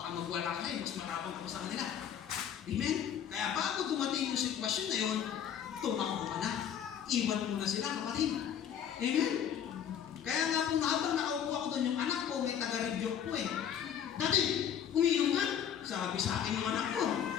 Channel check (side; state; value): right; quieter; 8.9 dB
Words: magwala ka mas matapang ka sa kanila. Amen? Kaya bago dumating yung sitwasyon na yun, tumakbo ka na. Iwan mo na sila, kapatid. Amen? Kaya nga po, habang nakaupo ako doon, yung anak ko, may taga-review ko eh. Dati, umiinom nga. Sabi sa akin yung anak ko.